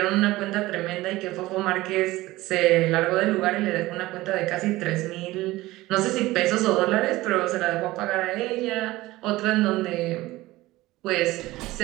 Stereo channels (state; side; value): quieter; left; 18.3 dB